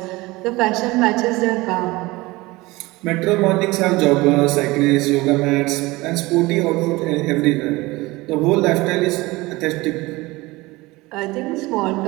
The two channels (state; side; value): quieter; left; 21.3 dB